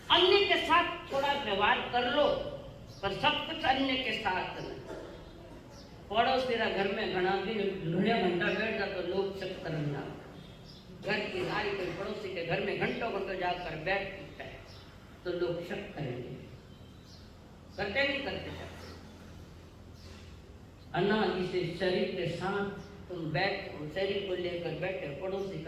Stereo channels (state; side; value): identical; both; correlation 1.00